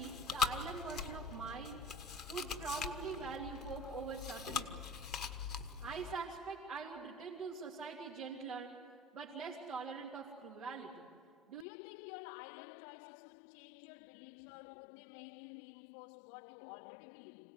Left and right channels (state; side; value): drops out; right; at 11.7 s